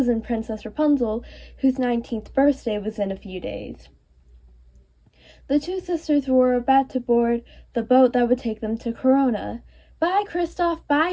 Princess Rapunzel, whose 19th birthday was in a few days. The two sisters were about to board the boat that would take them to Corona. Bye, Kristoff,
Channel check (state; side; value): identical; both; correlation 1.00